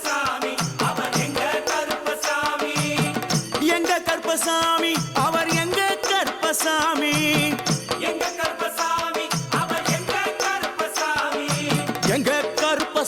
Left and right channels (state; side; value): identical; both; correlation 1.00